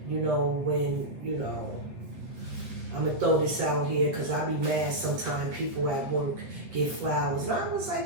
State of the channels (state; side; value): late; left; 8.2 ms